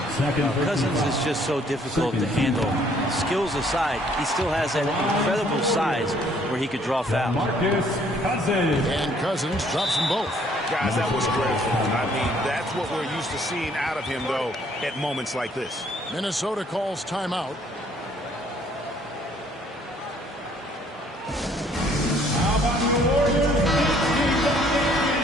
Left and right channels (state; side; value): normal; both; correlation 0.62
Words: Cousins is just so difficult to handle. Skills aside, he still has that incredible size where he could draw fouls. And Cousins drops them both. Guys, that was critical. I mean, that's what we're used to seeing out of him, though, at moments like this. Minnesota calls timeout. How about the Warriors?